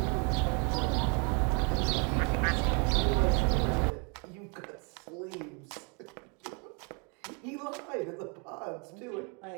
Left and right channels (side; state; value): left; quieter; 34.8 dB